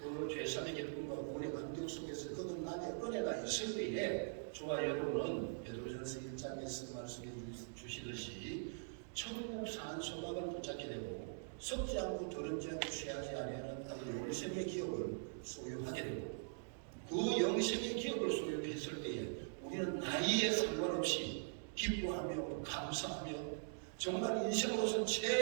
죄사함의 기쁨과 구원의 감격 속에서 거듭남의 은혜가 있을 때에 저와 여러분은 베드로전서 1장에서 말씀해 주시듯이 천국 산 소망을 붙잡게 되고 썩지 않고 더럽지 않고 취하지 아니하는 영생의 기업을 소유하게 되고 그 영생의 기업을 소유했을 때에 우리는 나이에 상관없이 기뻐하며 감사하며 정말 인생으로서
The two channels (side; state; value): left; silent; digital silence